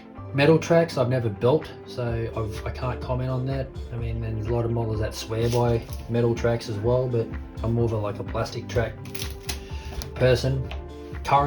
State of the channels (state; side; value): identical; both; correlation 1.00